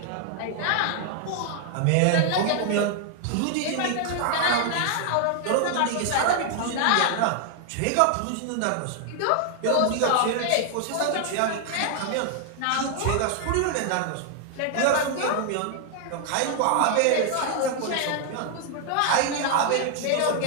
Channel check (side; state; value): both; different; correlation 0.00